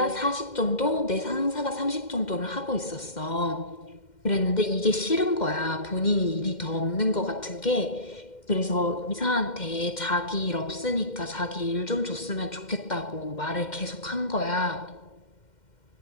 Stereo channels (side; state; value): right; late; 2.1 ms